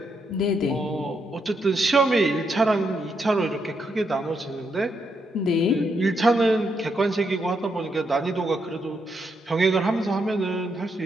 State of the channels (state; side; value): normal; both; correlation 0.79